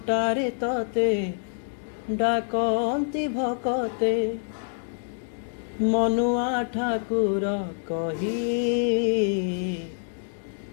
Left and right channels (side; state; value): right; silent; digital silence